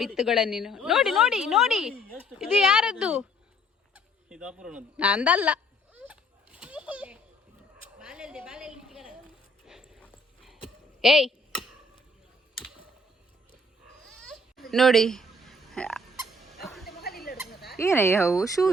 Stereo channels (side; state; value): both; normal; correlation 0.61